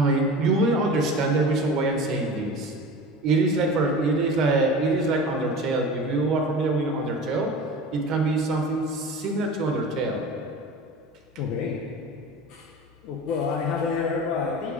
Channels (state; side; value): normal; both; correlation 0.35